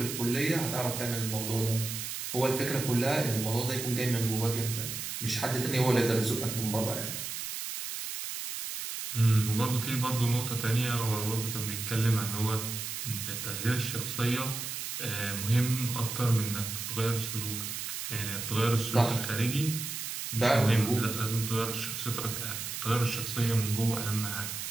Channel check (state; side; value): noise; right; hiss, 5 dB below the sound